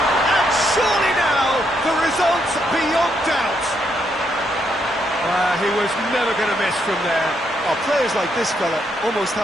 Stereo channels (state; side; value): normal; both; correlation 0.76